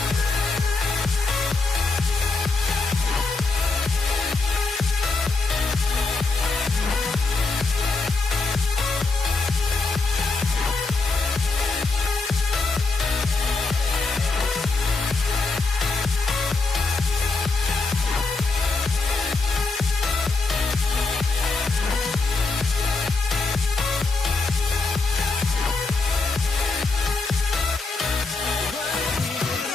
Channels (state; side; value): quieter; right; 3.8 dB